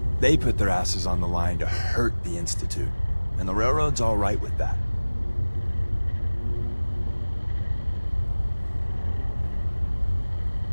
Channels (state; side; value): inverted; both; correlation -1.00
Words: They put their asses on the line to hurt the Institute, and the Railroad's all right with that.